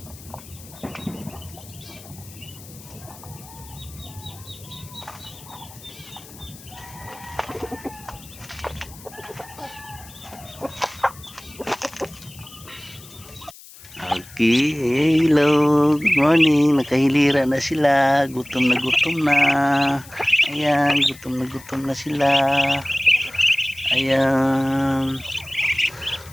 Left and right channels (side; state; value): left; noise; hiss, 19 dB below the sound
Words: hello, good morning. Nakahilira na sila. Gutom na gutom na. Ayan, gutom na sila. Ayan.